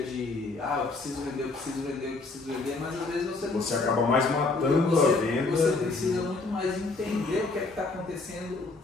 de eu preciso vender, mas às vezes você acaba mais matando a venda. Você precisa muito mais entender o que é que está acontecendo, o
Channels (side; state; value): right; quieter; 3.6 dB